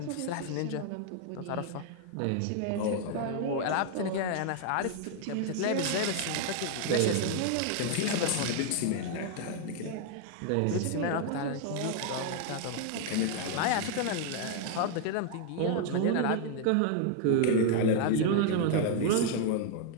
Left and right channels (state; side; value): different; both; correlation 0.00